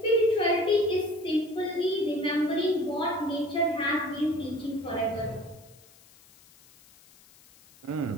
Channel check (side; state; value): left; noise; hiss, 26 dB below the sound